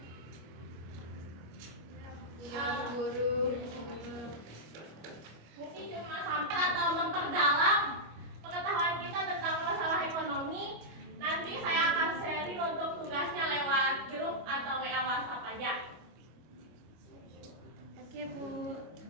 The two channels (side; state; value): left; late; 25 ms